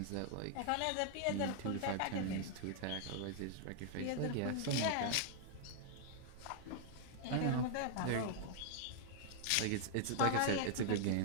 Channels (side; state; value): both; different; correlation -0.01